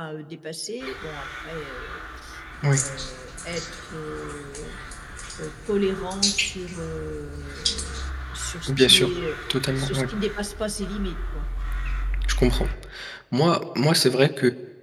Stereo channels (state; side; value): identical; both; correlation 1.00